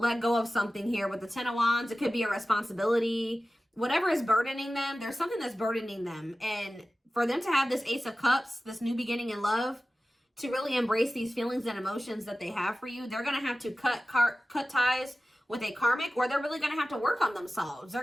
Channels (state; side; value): normal; both; correlation 0.96